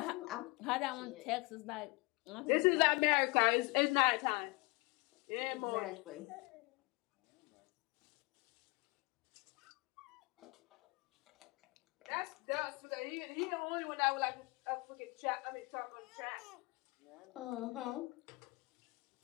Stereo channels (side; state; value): right; quieter; 26.4 dB